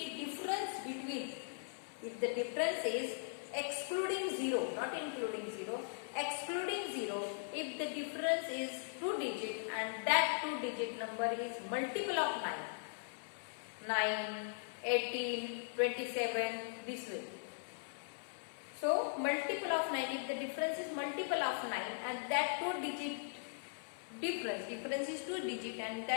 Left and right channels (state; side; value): silent; right; 51 dB below the other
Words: the difference is excluding 0, not including 0, excluding 0, if the difference is 2 digit and that 2 digit number is multiple of 9, 18, 27, this way. So multiple of 9, if the difference is multiple of 9 and that 2 digit difference is 2 digit and